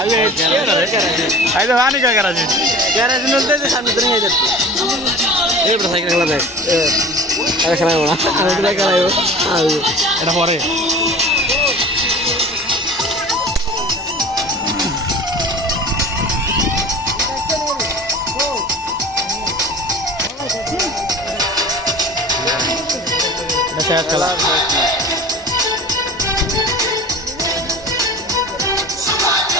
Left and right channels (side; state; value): both; normal; correlation 0.39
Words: আই তো পানি খায় কেরাসিন कैराची नलते थे सामने तो नहीं जाते ये बड़ा साइकिल खेला था अरे खेला हो ना अरे खेला हो हाँ এটা পরে এটা শেষ খেলা